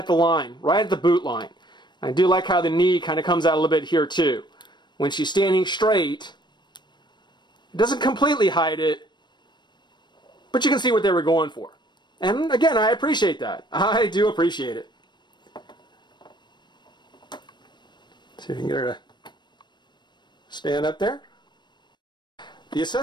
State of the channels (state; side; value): late; right; 0.22 ms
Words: the line, right at the boot line. I do like how the knee kind of comes out a little bit here too. When she's standing straight, it doesn't completely hide it, but you can see what they were going for. And again, I appreciate that. I do appreciate it. See if we can get her to stand up there. The